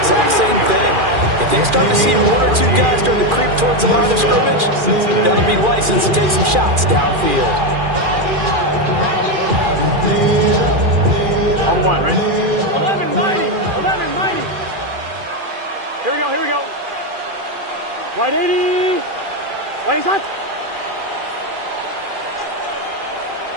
same thing. If they start to see one or two guys start to creep towards the line of scrimmage, that'll be licensed to take some shots downfield. On one, right? 11 mighty. 11 mighty. Here we go. Here we go. Wide 80. Wide shot.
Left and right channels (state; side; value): late; left; 2.4 ms